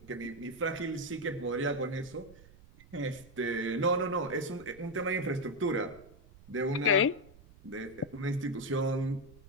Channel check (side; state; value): right; noise; rumble, 22 dB below the sound